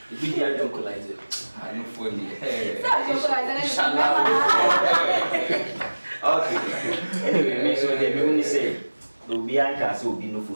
e be the adocolizer I no for the okay anyway me so they me say obi anka say obi no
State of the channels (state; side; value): inverted; both; correlation -1.00